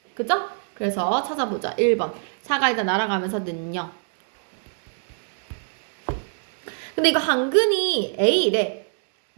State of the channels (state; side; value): silent; left; digital silence